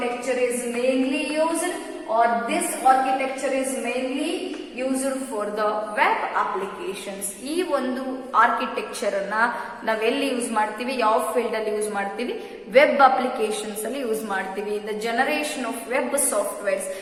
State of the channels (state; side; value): identical; both; correlation 1.00